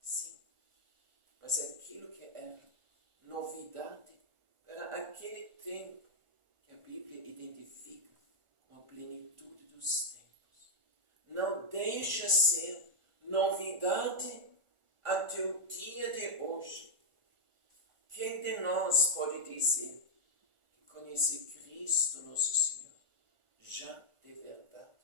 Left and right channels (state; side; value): late; left; 1.4 ms